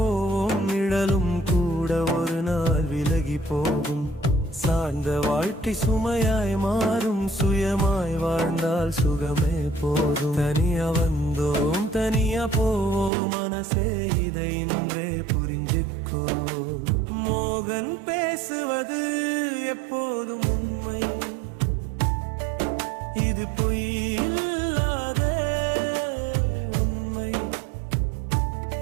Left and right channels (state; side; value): drops out; left; at 13.1 s